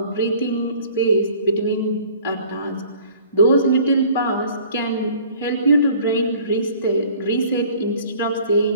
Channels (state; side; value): inverted; both; correlation -0.51